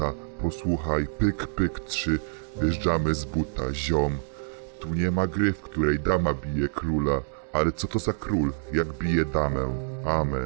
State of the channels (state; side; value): silent; left; 60 dB below the other